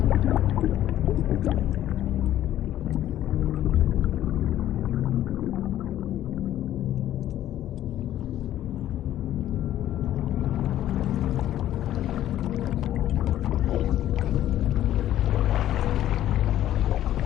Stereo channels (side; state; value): right; quieter; 12.5 dB